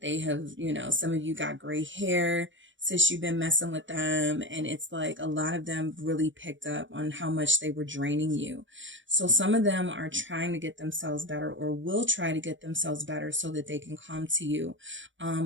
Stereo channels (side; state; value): left; late; 0.55 ms